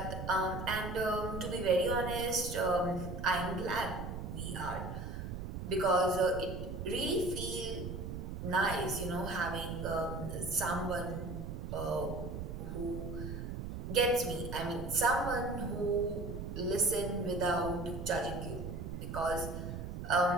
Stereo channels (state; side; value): noise; right; rumble, 6 dB below the sound